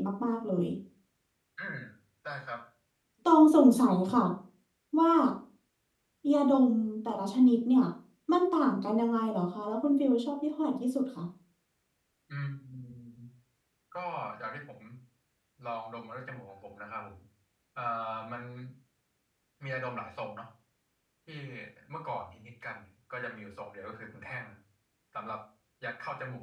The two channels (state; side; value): identical; both; correlation 1.00